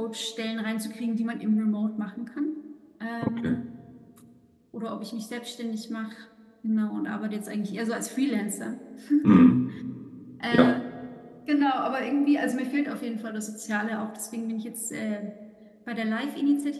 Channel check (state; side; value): identical; both; correlation 1.00